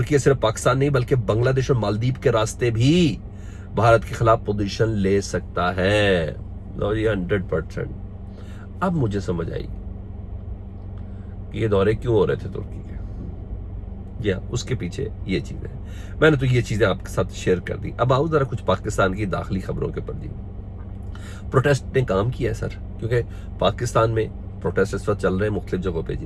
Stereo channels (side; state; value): both; identical; correlation 1.00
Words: सिर्फ पाकिस्तान नहीं बल्कि बांग्लादेश और मालदीव के रास्ते भी भारत के खिलाफ पोजीशन ले सकता है। 100%। अब मुझे समझ आई कि ये दौरे क्यों हो रहे थे तुर्की के, या उसके पीछे ये चीजें। मैंने तो ये चीजें आपके साथ शेयर कर दी। अब आओ जरा कुछ पाकिस्तान की दाखिली खबरों के ऊपर जी। प्रोटेस्ट ने काम किया है सर, क्योंकि पाकिस्तान में प्रोटेस्ट इस वक्त चल रहे हैं मुख्तलिफ जगहों पे जी।